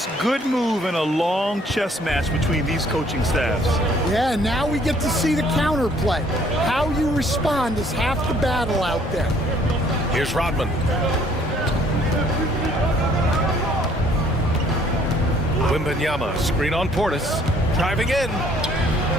good move in a long chess match between these coaching staffs. Yeah, now we get to see the counterplay. How you respond is half the battle out there. Here's Rodman. Wembanyama, screen on Portis. Driving in.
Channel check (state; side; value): normal; both; correlation 0.61